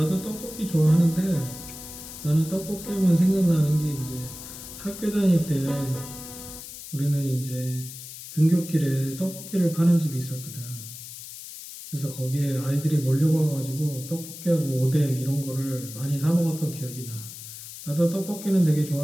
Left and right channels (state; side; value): noise; left; hiss, 13 dB below the sound